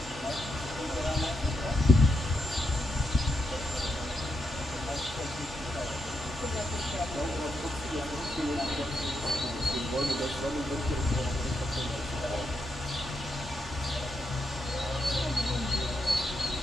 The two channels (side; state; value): both; normal; correlation 0.82